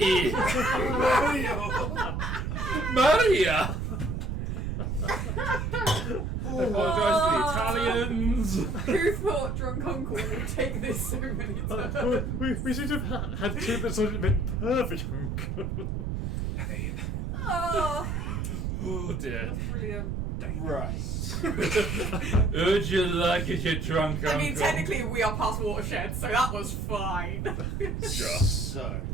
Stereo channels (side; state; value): right; noise; rumble, 2 dB below the sound